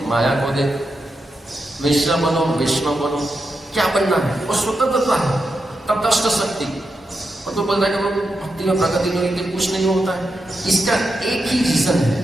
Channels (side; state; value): both; normal; correlation 0.87